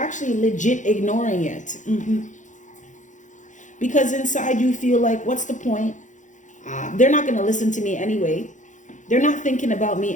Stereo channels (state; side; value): late; right; 0.36 ms